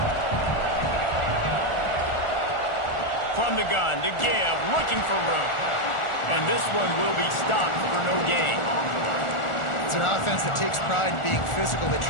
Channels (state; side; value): late; right; 1.4 ms